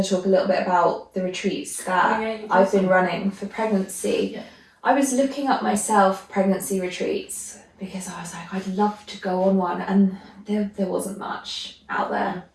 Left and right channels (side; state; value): both; identical; correlation 1.00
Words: to talk a little bit about the retreats that I've been running for pregnancy. I was looking up myself pregnancy retreats because I was like, I'd love to go on one, and there wasn't much out there.